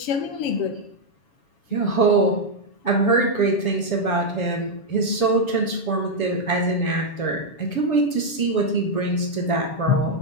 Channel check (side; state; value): right; late; 7.1 ms